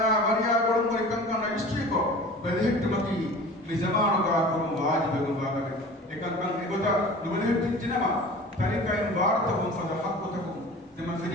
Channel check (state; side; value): normal; both; correlation 0.40